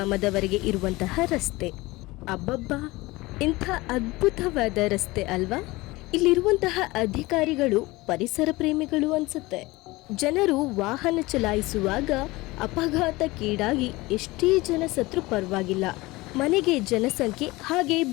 ಇರುವಂತಹ ರಸ್ತೆ. ಅಬ್ಬಬ್ಬಾ, ಇಂಥ ಅದ್ಭುತವಾದ ರಸ್ತೆ ಅಲ್ವಾ? ಇಲ್ಲಿರುವಂತಹ ಅಧಿಕಾರಿಗಳು ಪರಿಸರ ಪ್ರೇಮಿಗಳು ಅನ್ಸುತ್ತೆ. ಜನರು ವಾಹನ ಚಲಾಯಿಸುವಾಗ ಅಪಘಾತಕ್ಕೀಡಾಗಿ ಎಷ್ಟೇ ಜನ ಸತ್ರು ಪರವಾಗಿಲ್ಲ, ಮನೆಗೆ ಜನಸಂಖ್ಯೆ ಹಾಗೆ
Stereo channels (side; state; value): right; quieter; 21.1 dB